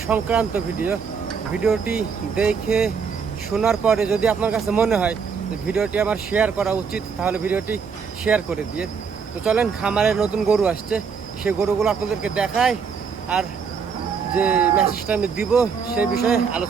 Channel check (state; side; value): quieter; left; 6.0 dB